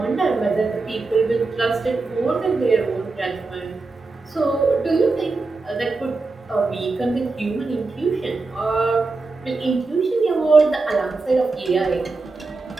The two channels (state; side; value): quieter; left; 3.7 dB